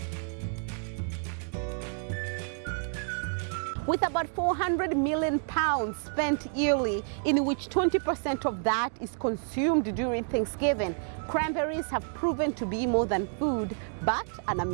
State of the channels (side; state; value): left; silent; 58 dB below the other